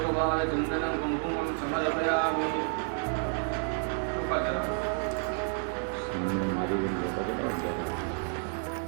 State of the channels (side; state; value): left; silent; 58 dB below the other